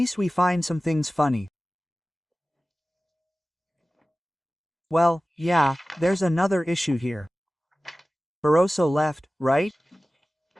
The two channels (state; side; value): normal; both; correlation 0.96